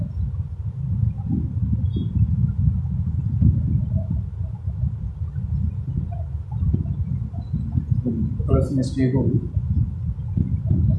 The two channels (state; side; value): identical; both; correlation 1.00